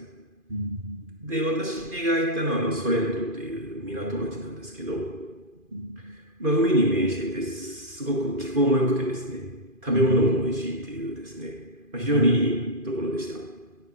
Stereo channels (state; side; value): late; left; 2.5 ms